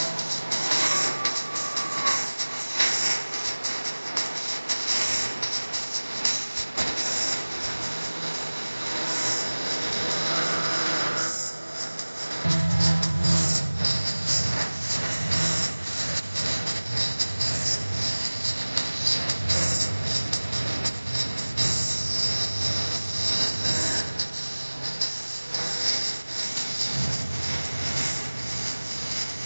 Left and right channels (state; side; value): inverted; both; correlation -1.00